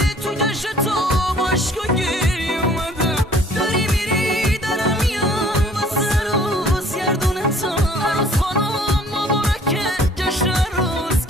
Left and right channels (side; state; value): both; normal; correlation 0.56